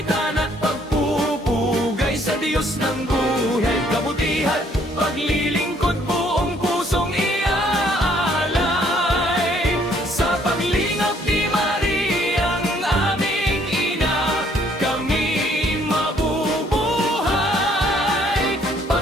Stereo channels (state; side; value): normal; both; correlation 0.64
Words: at pagpupugay sa Diyos ng buhay, kabutihan, paglilingkod, buong pusong iaalay. Sa paglingap ni Mariang aming ina, kami mabubuhay.